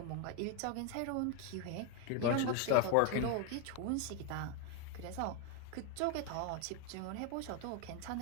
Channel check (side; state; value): both; different; correlation 0.01